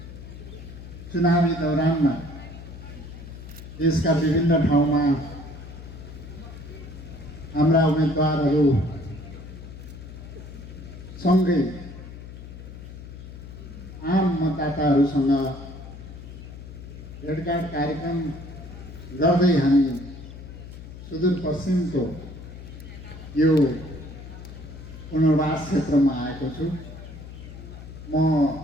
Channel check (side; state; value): left; noise; hum, 13 dB below the sound